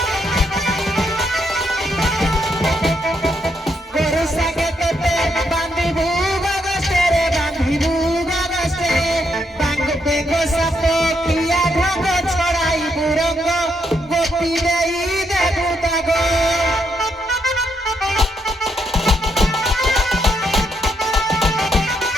गोरु सागे तेते बांधी भूगा गस्ते रे बांधी भूगा गस्ते बांग बेगो सापो किया ढंगो छड़ाई बुरंगो गोपी देई देबू तागो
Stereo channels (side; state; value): both; normal; correlation 0.77